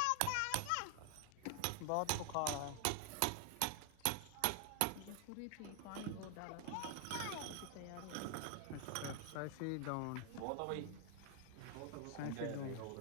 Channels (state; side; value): different; both; correlation 0.00